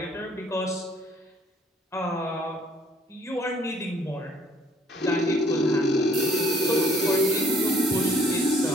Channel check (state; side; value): normal; both; correlation 0.61